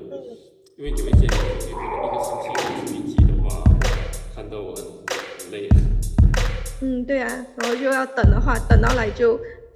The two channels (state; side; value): identical; both; correlation 1.00